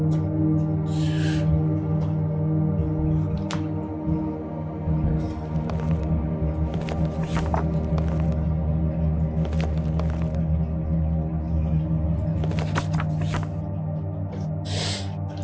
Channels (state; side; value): identical; both; correlation 1.00